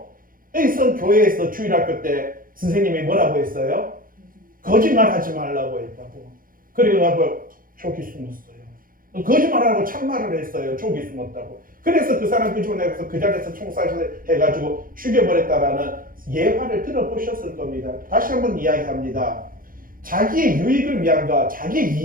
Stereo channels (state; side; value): late; left; 0.41 ms